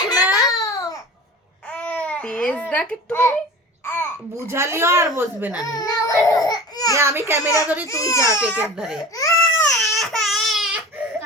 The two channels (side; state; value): both; normal; correlation 0.37